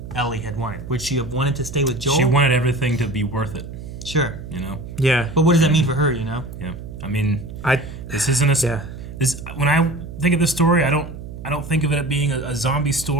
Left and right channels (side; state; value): right; noise; hum, 11 dB below the sound